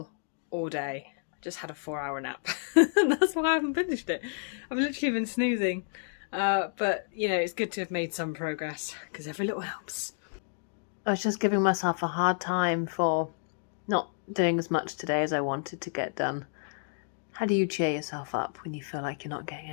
all day. I just had a 4-hour nap and that's why I haven't finished it. I've literally been snoozing, but you know, it's good to have made some progress because every little helps. I was just giving myself a hard time for not doing as much today as I wanted to get done. How do you cheer yourself up when you feel like you're not getting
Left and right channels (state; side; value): silent; right; digital silence